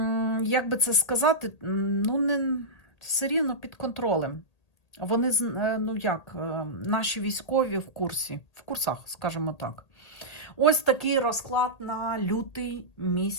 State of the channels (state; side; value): late; right; 1.8 ms